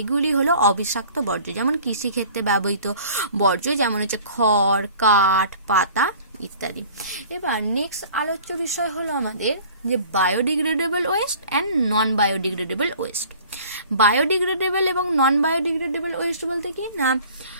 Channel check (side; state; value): both; inverted; correlation -0.48